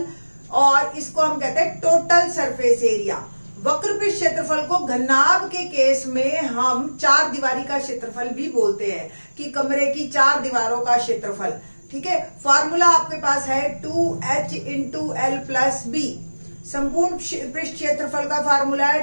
और इसको हम कहते हैं टोटल सरफेस एरिया। वक्र पृष्ठ क्षेत्रफल को घनाभ के केस में हम 4 दीवारी का क्षेत्रफल भी बोलते हैं कि कमरे की 4 दीवारों का क्षेत्रफल। ठीक है, फॉर्मूला आपके पास है 2h into L plus B. संपूर्ण पृष्ठ क्षेत्रफल का फॉर्मूला है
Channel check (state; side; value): inverted; both; correlation -1.00